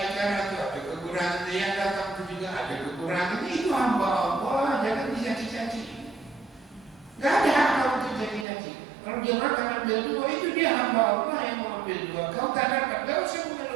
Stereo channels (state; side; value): drops out; left; at 8.5 s